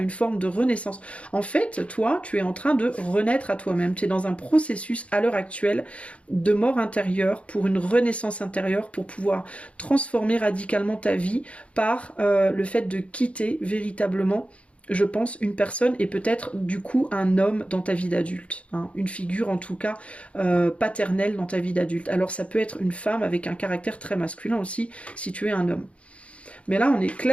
forme de renaissance. En fait, toi, tu es en train de renaître à toi-même. Tu es dans un processus à l'heure actuelle de mort intérieure pour une renaissance intérieure, pour pouvoir transformer radicalement ta vie par le fait de quitter véritablement, je pense, une personne et peut-être du coup un homme dans ta vie d'adulte, hein, une figure en tout cas paternelle dans ta vie d'adulte. Alors ça peut être une femme avec un caractère très masculin aussi si tu es un homme. Mais là on est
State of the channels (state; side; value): late; right; 0.062 ms